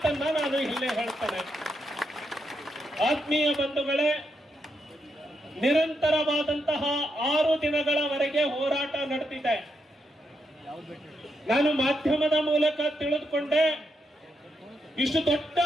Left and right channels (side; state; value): both; normal; correlation 0.81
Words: ನಾನು ಇಲ್ಲೇ ಹೇಳ್ತೇನೆ. ಆತ್ಮೀಯ ಬಂಧುಗಳೇ, ನಿರಂತರವಾದಂತಹ 6 ದಿನಗಳವರೆಗೆ ಹೋರಾಟ ನಡೆದಿದೆ. ನಾನು ಮಾಧ್ಯಮದ ಮೂಲಕ ತಿಳಿದುಕೊಂಡೆ, ಇಷ್ಟು ದೊಡ್ಡ